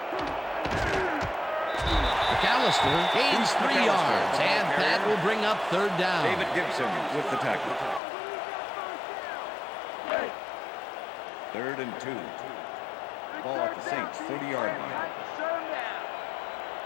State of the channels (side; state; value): right; drops out; at 8.0 s